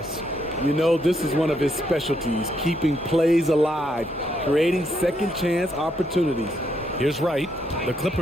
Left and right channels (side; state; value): both; normal; correlation 0.76